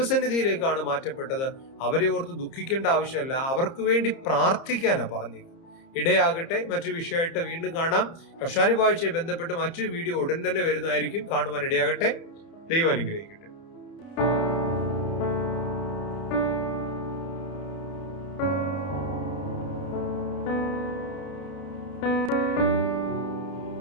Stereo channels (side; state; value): right; late; 30 ms